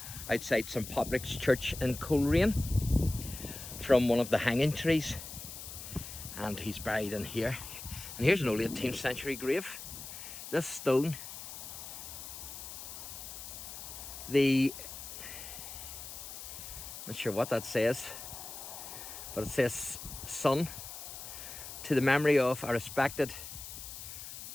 outside St Patrick's Church in Coleraine from one of the hanging trees. And he's buried in here. And here's an old 18th century grave. This stone, not sure what that says, but it says, "Son, to the memory of a respected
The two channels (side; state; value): left; noise; hiss, 10 dB below the sound